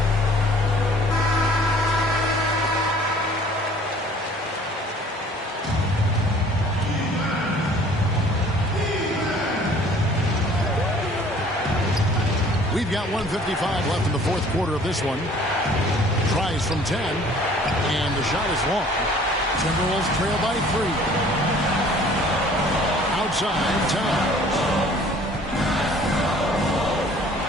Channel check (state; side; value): normal; both; correlation 0.53